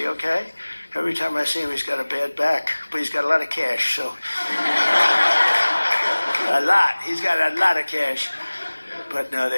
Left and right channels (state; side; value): inverted; both; correlation -1.00